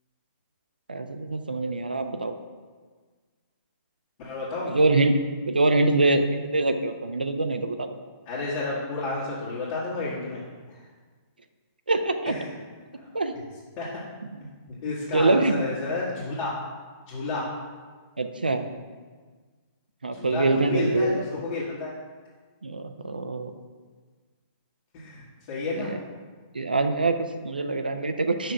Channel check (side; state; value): both; inverted; correlation -0.71